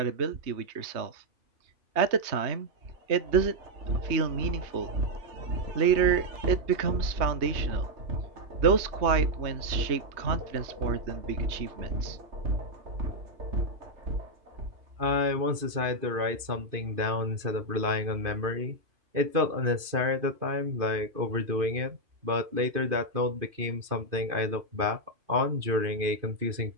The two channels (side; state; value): left; late; 2.5 ms